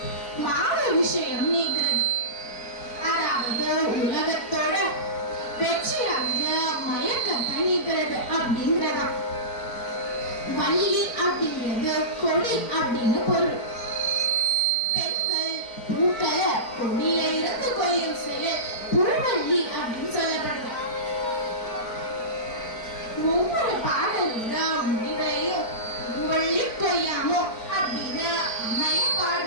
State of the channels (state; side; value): late; right; 4.5 ms